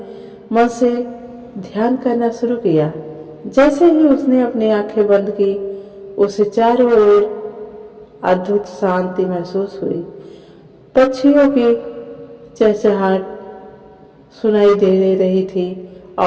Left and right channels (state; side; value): identical; both; correlation 1.00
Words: मन से ध्यान करना शुरू किया। जैसे ही उसने अपनी आंखें बंद की, उसे चारों ओर अद्भुत शांति महसूस हुई। पक्षियों की चहचहाट सुनाई दे रही थी